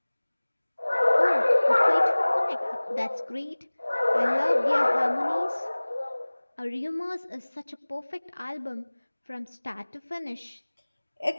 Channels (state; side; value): inverted; both; correlation -1.00